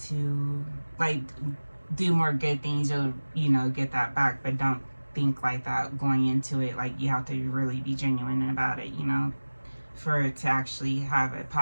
to like do more good things. You'll, you know, get that back, but don't think like that going into it. Like, you have to really be genuine about it, you know, for it to actually have a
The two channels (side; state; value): both; inverted; correlation -1.00